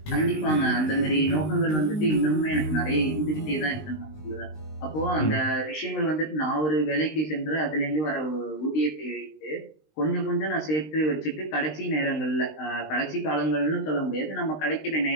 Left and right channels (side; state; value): right; late; 19 ms